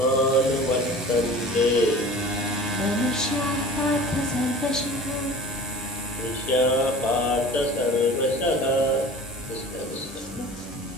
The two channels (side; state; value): both; normal; correlation 0.40